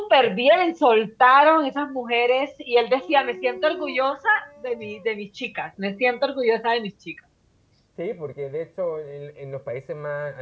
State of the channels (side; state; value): both; identical; correlation 1.00